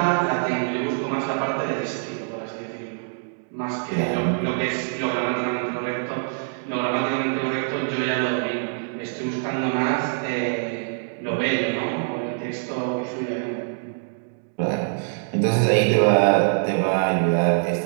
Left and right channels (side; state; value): left; silent; digital silence